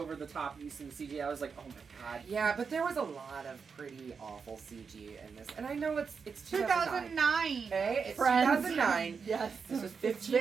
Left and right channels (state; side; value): quieter; left; 5.7 dB